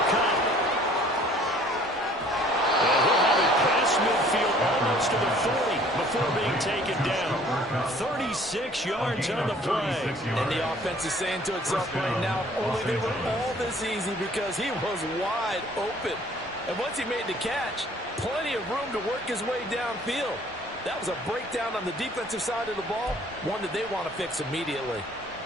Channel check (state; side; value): normal; both; correlation 0.55